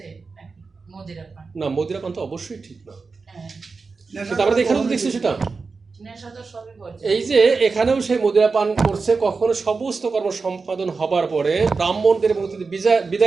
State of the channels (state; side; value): quieter; left; 4.5 dB